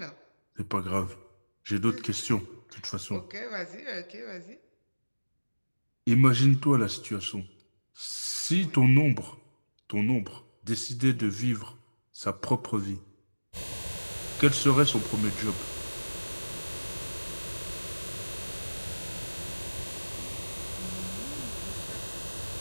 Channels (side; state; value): both; inverted; correlation -1.00